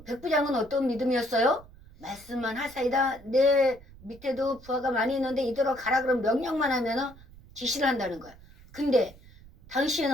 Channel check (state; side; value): noise; right; rumble, 22 dB below the sound